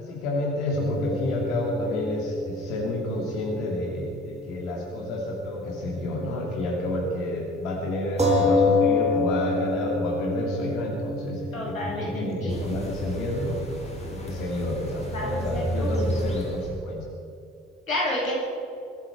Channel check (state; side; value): normal; both; correlation 0.47